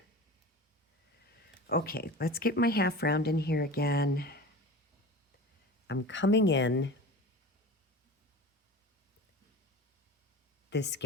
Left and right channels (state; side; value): normal; both; correlation 0.35